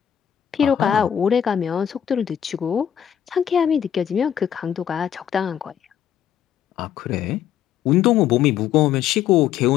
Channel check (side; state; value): right; quieter; 9.6 dB